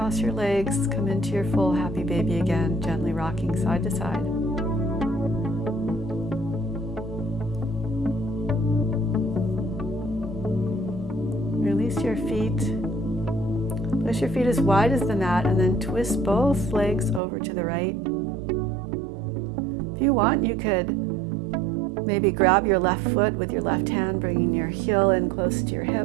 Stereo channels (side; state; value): left; drops out; at 17.2 s